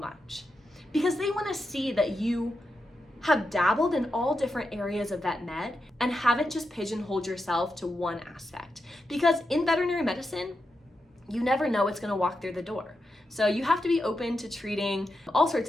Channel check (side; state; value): both; normal; correlation 0.87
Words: because they want to see that you have dabbled in all different areas of vet med and haven't just pigeonholed yourself to one aspect. Because in veterinary medicine, you never know what's going to walk through the door. So you have to be open to treating all sorts